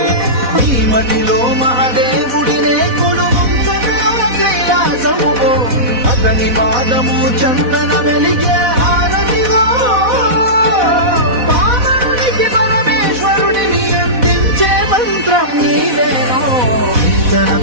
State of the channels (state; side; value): late; left; 4.1 ms